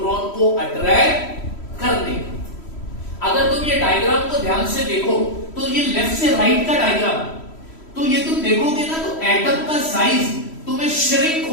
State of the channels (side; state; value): right; late; 3.1 ms